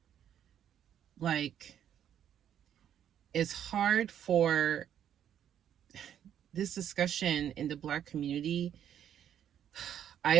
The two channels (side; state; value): left; quieter; 9.8 dB